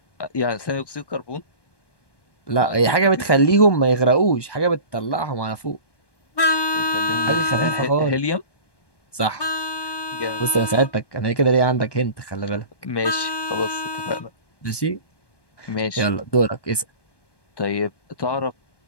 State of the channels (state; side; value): late; right; 1.2 ms